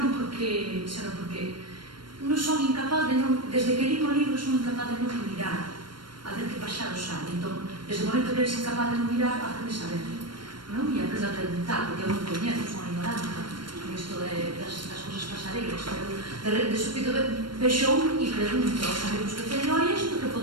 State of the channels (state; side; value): late; left; 0.72 ms